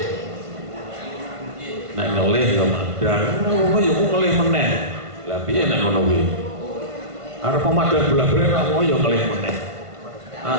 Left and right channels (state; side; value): late; left; 1.5 ms